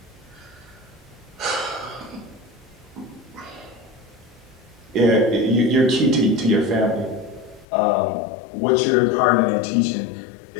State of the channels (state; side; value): drops out; right; at 7.7 s